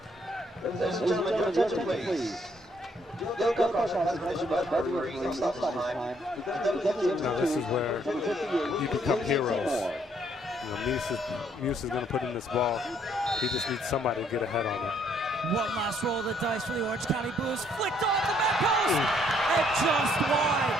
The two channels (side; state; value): both; normal; correlation 0.67